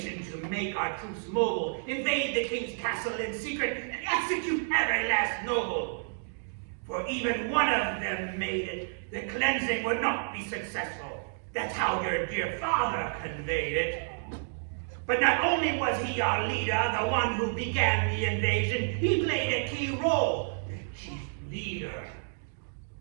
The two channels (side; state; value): left; silent; digital silence